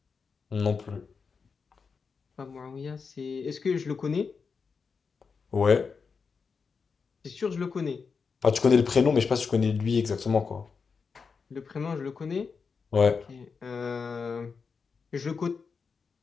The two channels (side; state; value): right; quieter; 5.4 dB